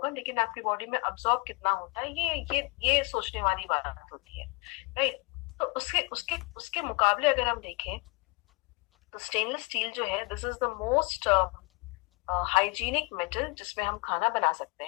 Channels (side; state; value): right; quieter; 27.2 dB